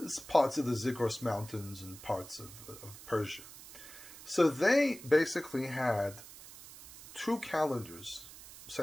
parts of the Zagros Mountains and parts of Persia. So they basically had 2 calendars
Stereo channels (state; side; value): noise; right; hiss, 16 dB below the sound